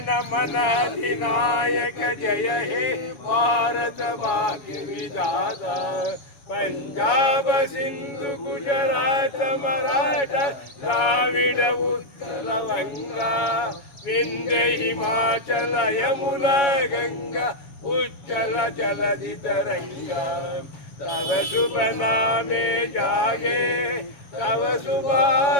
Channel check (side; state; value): right; late; 7.2 ms